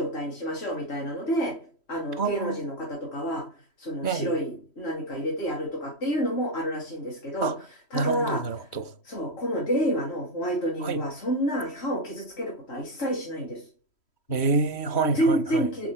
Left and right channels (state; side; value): late; right; 3.1 ms